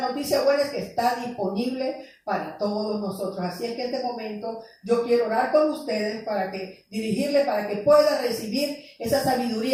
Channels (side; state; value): both; identical; correlation 1.00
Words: noticia buena es que está disponible para todos nosotros. Así es que en este momento yo quiero orar con ustedes dirigirle para que pueda recibir esa